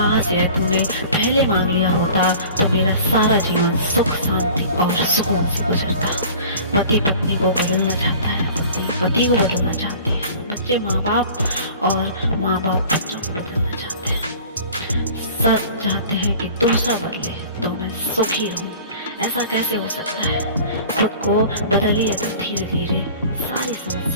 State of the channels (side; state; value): both; inverted; correlation -0.44